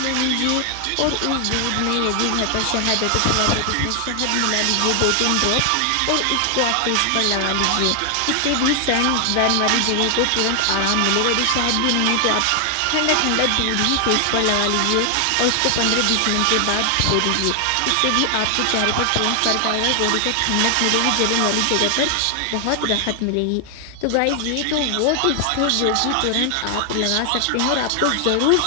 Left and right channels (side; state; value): both; different; correlation 0.00